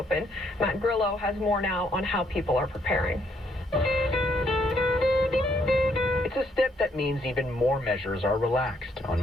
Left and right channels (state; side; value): normal; both; correlation 0.71